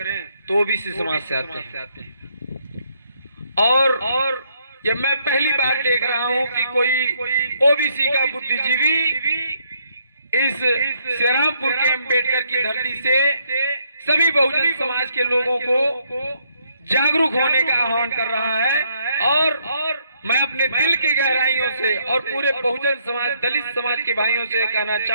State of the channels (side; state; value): both; inverted; correlation -0.71